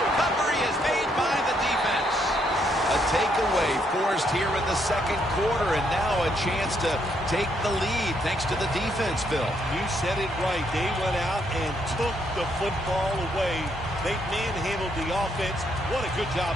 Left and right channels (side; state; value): both; normal; correlation 0.74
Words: is made by the defense. A takeaway forced here in the second quarter, and now a chance to take the lead thanks to the defense, Phil. You said it right. They went out and took the football away. They manhandled the offense. What a good